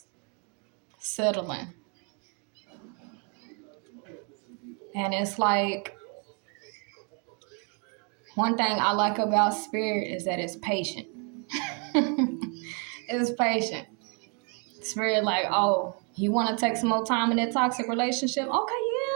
Settling. And it's like, one thing I like about spirit is that it's patient. It's patient. Spirit like, oh, you want to take some more time in that toxic relationship? Okay,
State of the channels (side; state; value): left; quieter; 37.8 dB